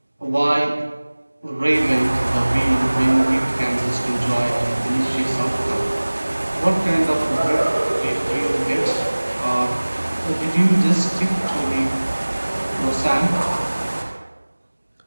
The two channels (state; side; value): inverted; both; correlation -1.00